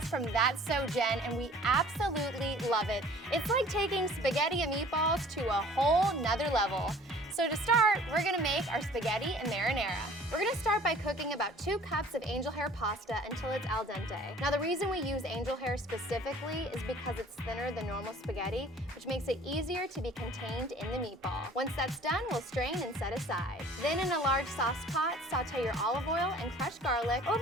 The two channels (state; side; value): normal; both; correlation 0.50